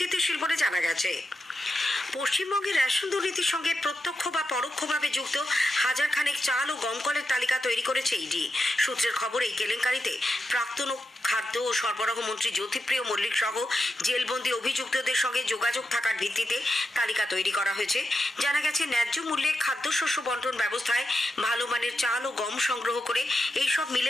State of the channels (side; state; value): both; normal; correlation 0.88